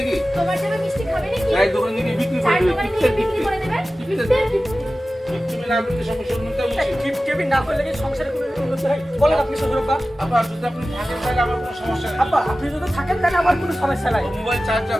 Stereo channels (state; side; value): normal; both; correlation 0.95